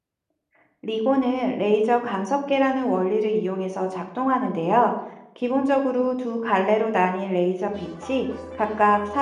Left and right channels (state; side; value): identical; both; correlation 1.00